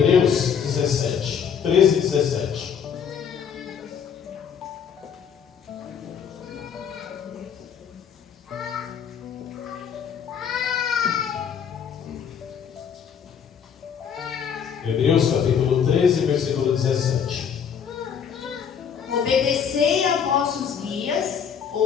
17, 13 e 17. Hebreus capítulo 13, versículo 17. Obedecei a vossos guias,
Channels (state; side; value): quieter; right; 7.5 dB